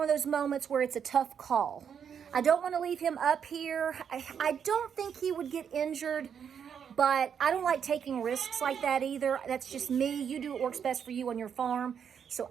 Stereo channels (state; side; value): quieter; left; 7.7 dB